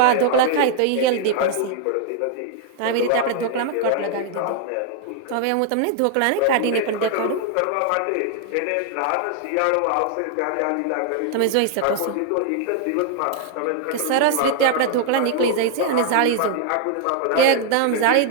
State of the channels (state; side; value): different; both; correlation 0.00